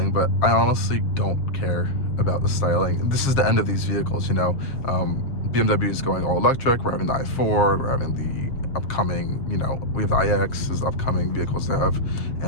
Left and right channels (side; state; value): right; late; 7.4 ms